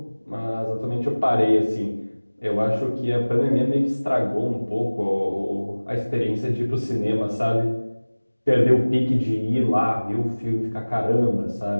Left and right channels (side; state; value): both; inverted; correlation -1.00